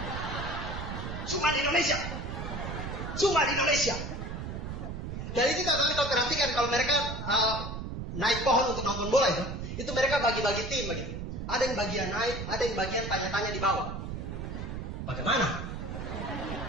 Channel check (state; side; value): noise; right; rumble, 6 dB below the sound